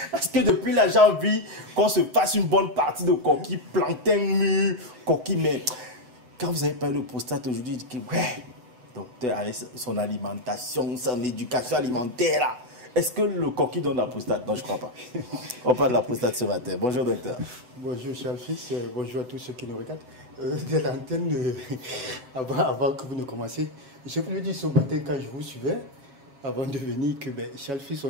Est-ce que depuis là, j'ai envie qu'on se fasse une bonne partie de coquille, plantain mûr, coquille, mais quand vous avez parlé de prostate aujourd'hui, je dis que ouais, docteur, avec son alimentation, son éducation alimentaire là, est-ce que le coquille donne la prostate? Non, je crois pas. On parle de la prostate ce matin. Bonjour docteur. Bonjour cher fils, bonjour à tous ceux qui nous regardent. De l'antenne, avant que vous ne commenciez, je voulais dire ce matin quand je vous suivais, avant de venir, que cher fils,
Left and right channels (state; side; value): late; left; 8.1 ms